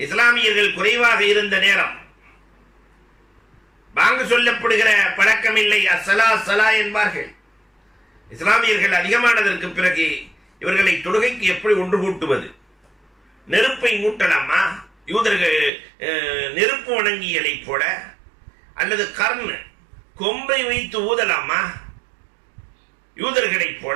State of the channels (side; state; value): left; drops out; at 15.7 s